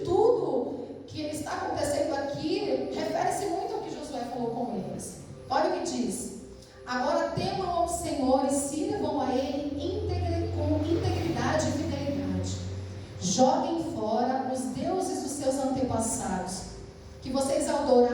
tudo que está acontecendo aqui refere-se muito ao que Josué falou com eles. Olha o que diz. Agora temam ao Senhor e sirvam a Ele com integridade e fidelidade. Joguem fora os deuses dos seus antepassados, que vocês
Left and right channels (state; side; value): identical; both; correlation 1.00